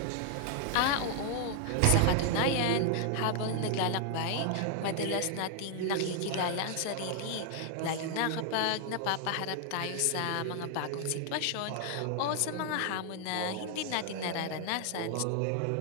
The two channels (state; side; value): different; both; correlation 0.00